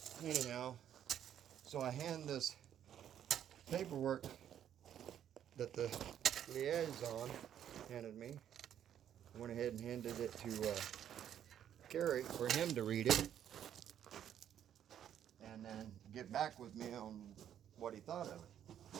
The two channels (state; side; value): quieter; left; 10.0 dB